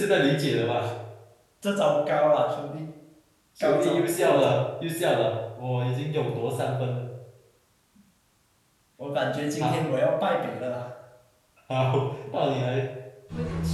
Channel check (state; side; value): identical; both; correlation 1.00